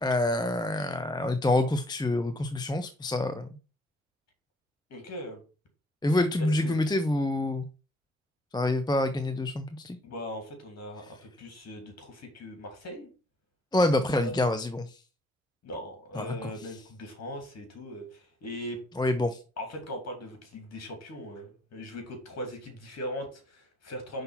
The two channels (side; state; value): both; normal; correlation 0.67